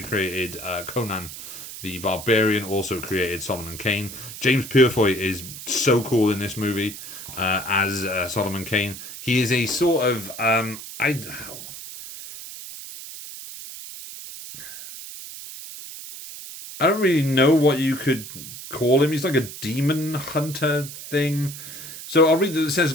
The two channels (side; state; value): right; noise; hiss, 12 dB below the sound